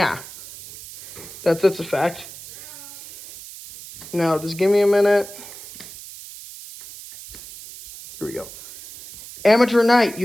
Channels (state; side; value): noise; right; hiss, 15 dB below the sound